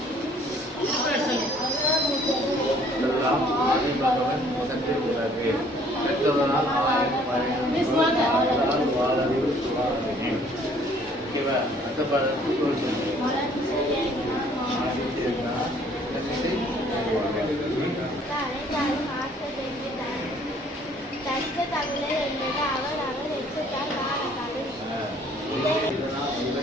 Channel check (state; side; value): normal; both; correlation 0.59